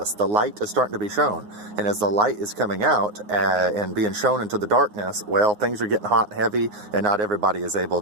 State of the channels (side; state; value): left; late; 9.6 ms